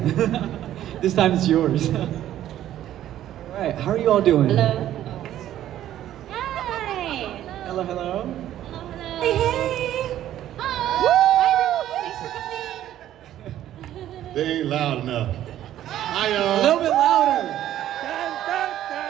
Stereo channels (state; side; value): quieter; left; 12.3 dB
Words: This time it's yours. Alright, how are you all doing? Hello. Hi. Hello, hello. Hello, hello. Hey, hey. Hi. Hi, everyone. Thanks for coming. They ain't loud enough. Hi, A y'all. little bit louder.